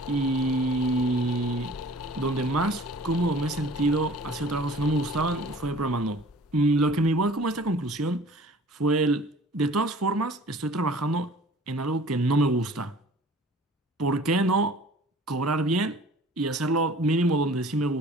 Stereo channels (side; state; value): both; normal; correlation 0.48